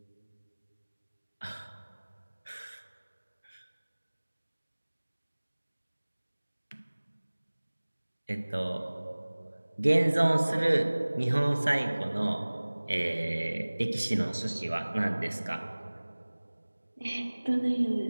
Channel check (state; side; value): inverted; both; correlation -1.00